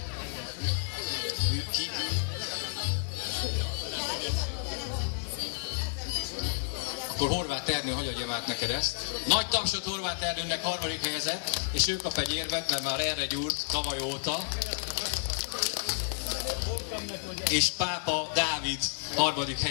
Akkor Horváth Ernő hagyjam át neked ezt. Nagy tapsot Horváth Ernőnek, harmadik helyezett, és ő kap egy érvet, mert már erre gyúrt tavaly óta. És Pápa Dávid harmadik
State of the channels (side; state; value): right; silent; 57 dB below the other